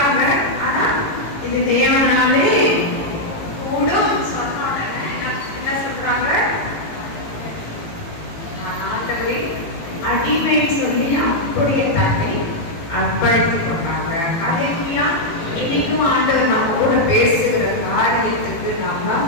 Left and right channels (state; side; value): late; right; 18 ms